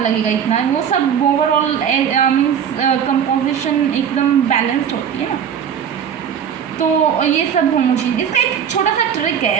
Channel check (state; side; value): quieter; left; 8.2 dB